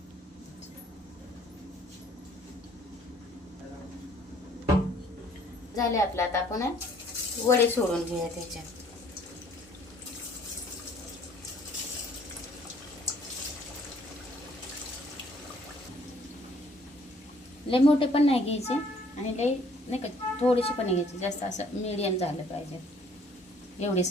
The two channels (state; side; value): normal; both; correlation 0.60